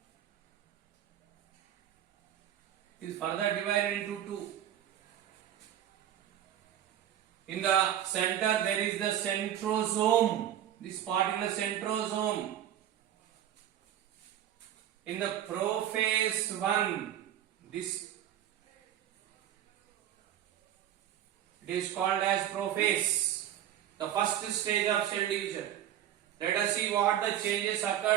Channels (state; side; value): quieter; left; 11.1 dB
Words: Is further divided into 2. In the center there is the centrosome. This particular centrosome. In the prophase 1, this it is called as prophase, the first stage of cell division. Let us see what the changes